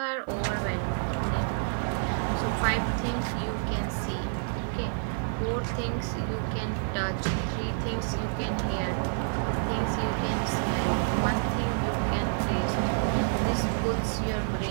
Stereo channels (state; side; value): silent; left; 56 dB below the other